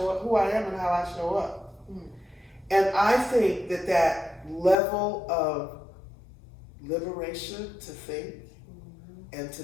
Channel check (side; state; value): right; drops out; at 4.8 s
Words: up, who I am and how I show up. And I think that level of liberation to think and to